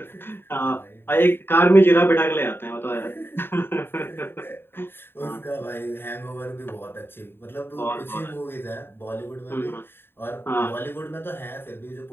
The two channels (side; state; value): right; late; 0.11 ms